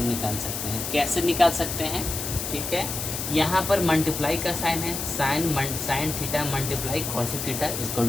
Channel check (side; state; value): left; noise; hiss, 4 dB below the sound